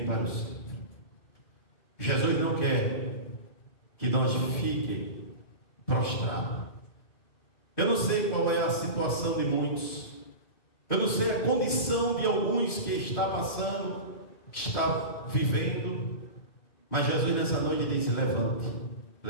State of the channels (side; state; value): right; late; 2.5 ms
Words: para o centro. Jesus não quer que nós fiquemos prostrados. Eu não sei qual é a situação de muitos, eu não sei a condição de alguns que está passando, que está vivendo, mas Jesus nessa noite disse: levante,